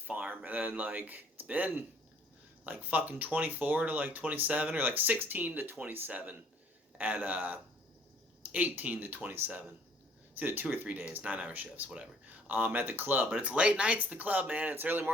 and then it's been like fucking 24 to like 27, or like 16 to 27 at 18 to 27. It's either 2 or 3 days, 9-hour shifts, whatever. At the club, but it's late nights at the club, man. It's early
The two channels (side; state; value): both; normal; correlation 0.60